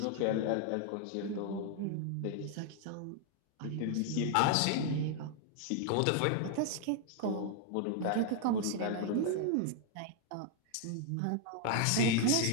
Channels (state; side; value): different; both; correlation 0.00